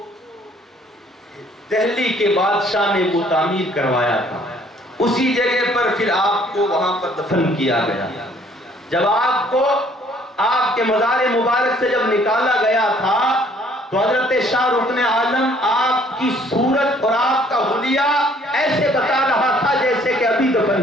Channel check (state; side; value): normal; both; correlation 0.60